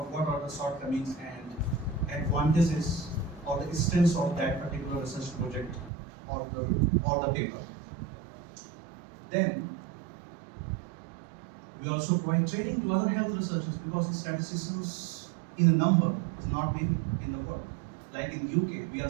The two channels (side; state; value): left; drops out; at 5.9 s